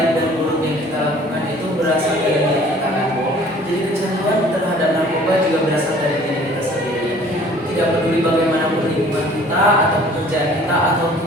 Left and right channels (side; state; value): both; normal; correlation 0.52